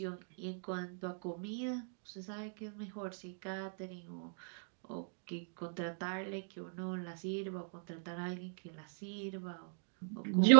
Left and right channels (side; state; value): left; silent; digital silence